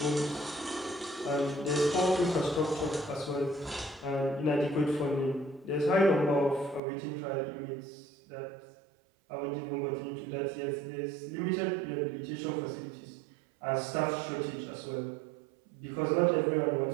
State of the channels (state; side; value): drops out; left; at 6.8 s